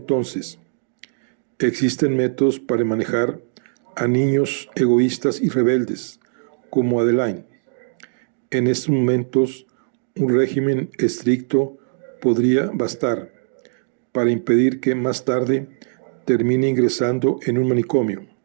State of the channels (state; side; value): silent; left; digital silence